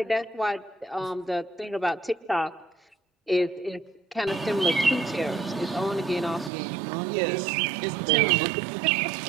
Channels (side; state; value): left; drops out; at 6.5 s